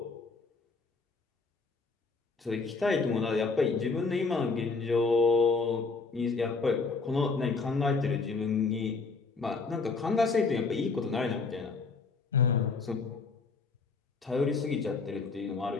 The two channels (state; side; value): quieter; right; 4.3 dB